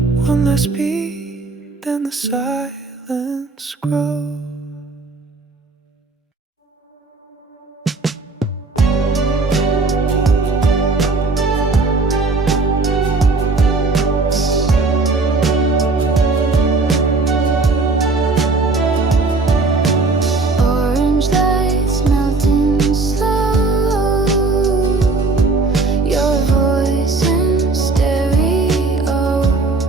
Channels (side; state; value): left; quieter; 3.7 dB